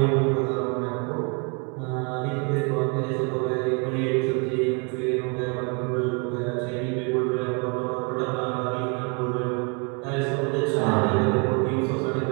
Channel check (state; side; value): quieter; left; 33.5 dB